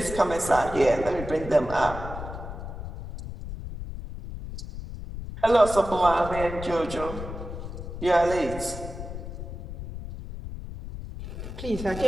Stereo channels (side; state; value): left; noise; rumble, 9 dB below the sound